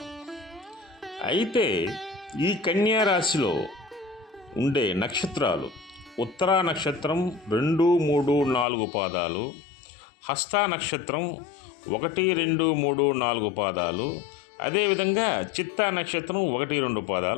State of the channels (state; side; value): drops out; right; at 8.7 s